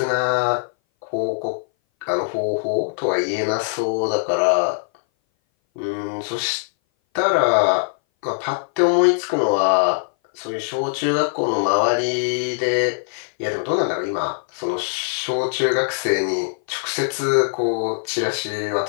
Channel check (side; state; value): right; silent; 59 dB below the other